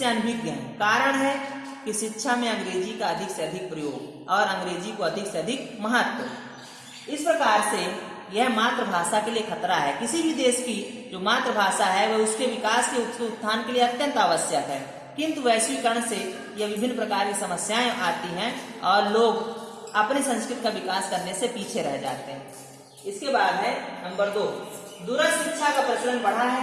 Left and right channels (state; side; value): identical; both; correlation 1.00